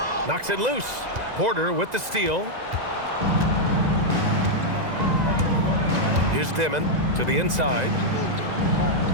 Knocks it loose. Porter with the steal. Here's Dimon to the inside.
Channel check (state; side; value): late; left; 2.0 ms